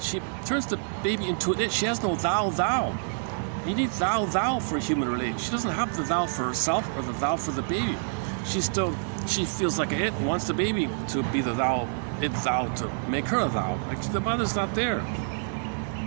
turns the baby into an it. She has no thou. You need thou for a human relation. She doesn't have the thou for herself or the thou for the baby. She feels like a it and wants the baby to be the thou, to make her a thou. Like the mother's not there.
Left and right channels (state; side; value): silent; left; 60 dB below the other